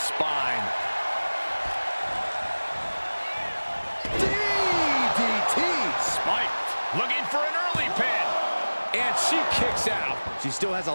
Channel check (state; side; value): inverted; both; correlation -1.00